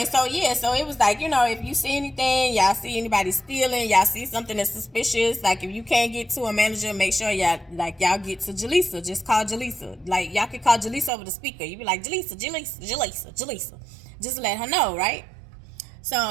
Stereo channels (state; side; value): drops out; left; at 11.1 s